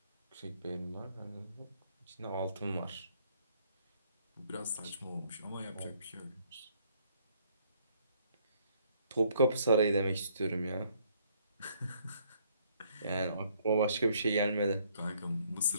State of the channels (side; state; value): both; inverted; correlation -0.66